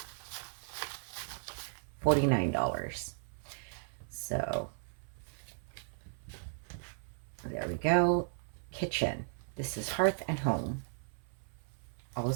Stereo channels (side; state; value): left; silent; 54 dB below the other